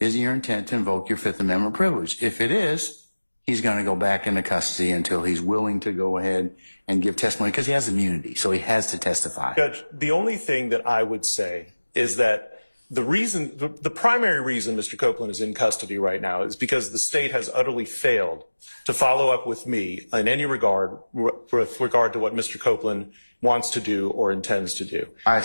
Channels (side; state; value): both; inverted; correlation -1.00